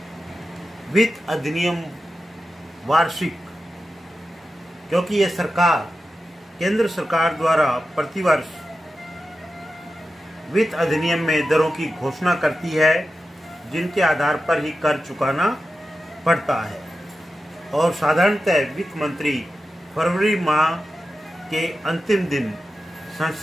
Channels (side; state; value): both; normal; correlation 0.91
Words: वित्त अधिनियम वार्षिक, क्योंकि यह सरकार केंद्र सरकार द्वारा प्रतिवर्ष वित्त अधिनियम में दरों की घोषणा करती है जिनके आधार पर ही कर चुकाना पड़ता है और साधारणतः वित्त मंत्री फरवरी माह के अंतिम दिन